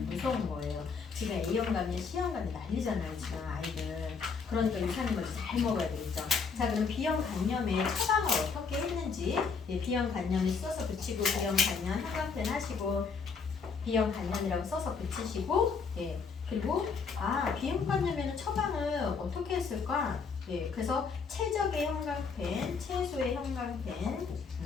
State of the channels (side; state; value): right; quieter; 5.3 dB